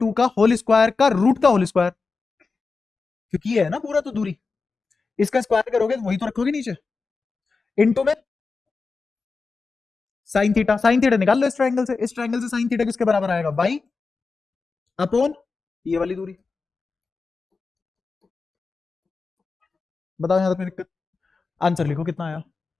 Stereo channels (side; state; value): right; quieter; 4.4 dB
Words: का होल स्क्वायर का रूट का होल स्क्वायर, क्योंकि ये है ना पूरा तो दूरी, इसका स्क्वायर करोगे तो वही तो रखोगे नीचे, इनटू में साइन थीटा, साइन थीटा निकाल लो इस ट्रायंगल से, इस ट्रायंगल से साइन थीटा किसके बराबर आएगा, वाई अपोन ये वाली दूरी। बताओ यहां तक कोई दिक्कत? आंसर लिखो कितना आया,